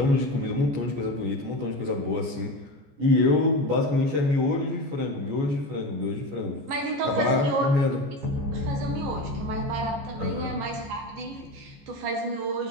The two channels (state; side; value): late; left; 14 ms